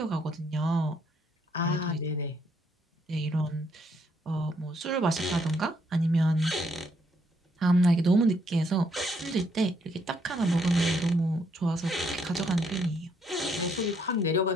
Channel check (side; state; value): both; normal; correlation 0.71